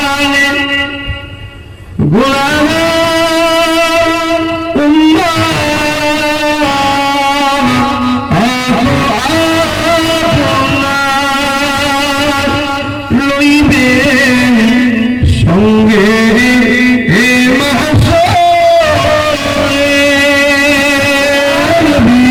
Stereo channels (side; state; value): both; identical; correlation 1.00